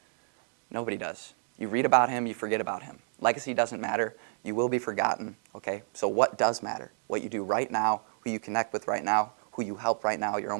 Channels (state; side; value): silent; left; digital silence